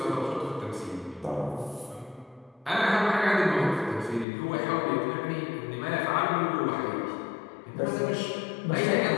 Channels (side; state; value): right; drops out; at 4.2 s